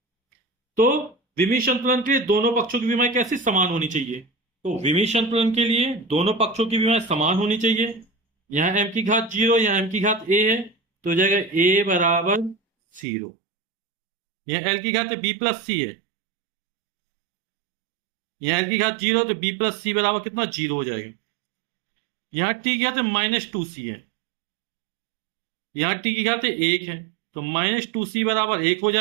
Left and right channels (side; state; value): left; drops out; at 13.1 s